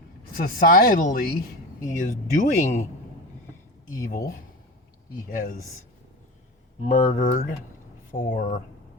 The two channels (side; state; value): both; normal; correlation 0.27